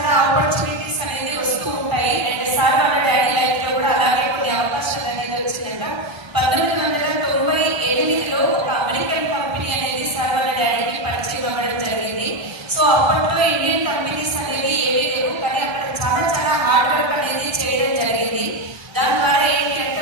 ఆపర్చునిటీస్ అనేది వస్తూ ఉంటాయి. అండ్ సార్ వాళ్ళ డాడీ లైఫ్ లో కూడా అలాగే కొన్ని అవకాశాలు అనేది వచ్చిందంట. 1998లో ఒక అమెరికన్ కంపెనీ అనేది సార్ వాళ్ళ డాడీకి పరిచయం అవ్వడం జరిగింది. సో అప్పట్లో ఇండియన్ కంపెనీస్ అనేవి ఏవీ లేవు, కానీ అక్కడ చాలా చాలా హార్డ్ వర్క్ అనేది చేయడం జరిగింది. దాని ద్వారా ఏంటి అంటే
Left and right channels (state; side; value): late; left; 1.3 ms